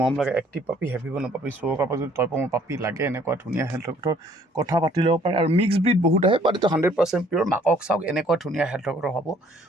মৰম লাগে এক্টিভ পাপি, হেভি বন পাপি। চ' কাৰোবাক যদি টয়পমৰ পাপি লাগে, এনেকুৱা ধুনীয়া হেল্থৰ কথা পাতি ল'ব পাৰে। আৰু মিক্স ব্ৰিড বহুত আহে, বাট এইটো 100% পিয়'ৰ। মাকক চাওক, এনেকুৱা ধুনীয়া হেল্থৰ হ'ব।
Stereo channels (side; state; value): both; normal; correlation 0.60